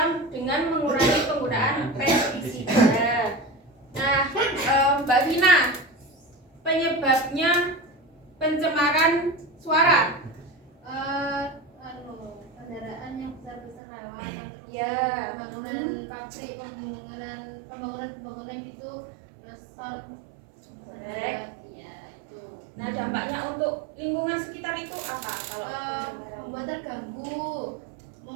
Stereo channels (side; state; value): left; drops out; at 13.8 s